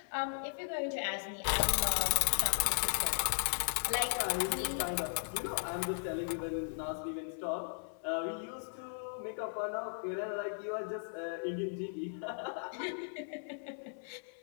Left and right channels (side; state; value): right; silent; 53 dB below the other